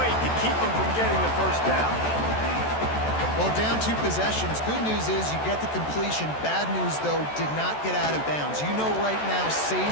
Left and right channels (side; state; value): right; late; 14 ms